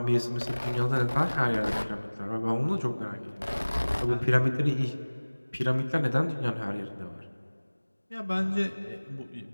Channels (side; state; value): both; inverted; correlation -1.00